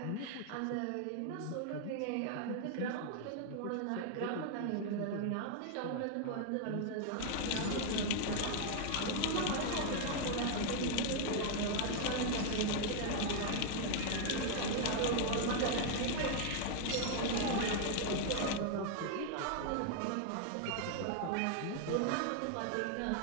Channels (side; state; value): both; different; correlation 0.00